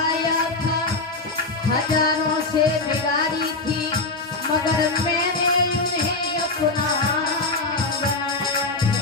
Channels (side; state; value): right; quieter; 3.4 dB